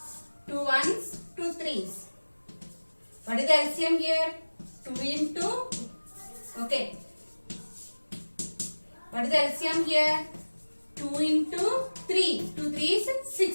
2 ones, 2 threes. What is the LCM here? 2 into, okay. What is the LCM here? 2 into 3. 2 3s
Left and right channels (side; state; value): both; inverted; correlation -1.00